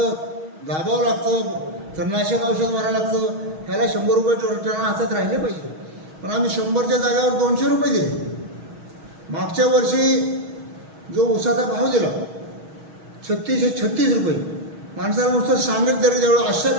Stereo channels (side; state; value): left; late; 6.3 ms